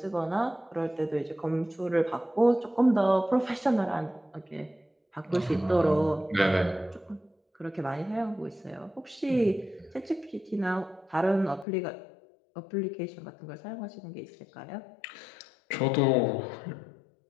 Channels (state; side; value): drops out; right; at 11.7 s